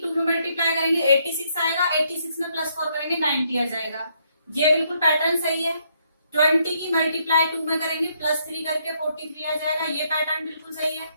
2 में मल्टीप्लाई करेंगे 86 आएगा, 86 में +4 करेंगे 90 आ जाएगा। ये बिल्कुल पैटर्न सही है। 20 की मल्टीप्लाई 2 में करेंगे +3 करके 43 आ जाएगा। ये पैटर्न बिल्कुल सही है,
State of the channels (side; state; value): both; inverted; correlation -0.73